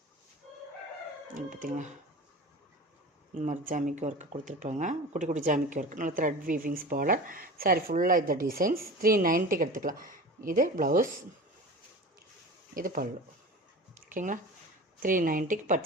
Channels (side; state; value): both; normal; correlation 0.35